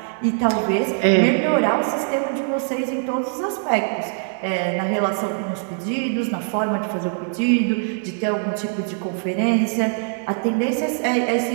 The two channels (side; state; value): left; silent; 64 dB below the other